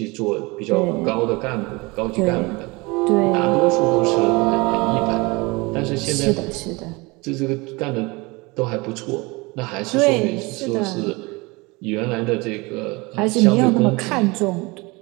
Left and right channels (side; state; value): left; quieter; 25.1 dB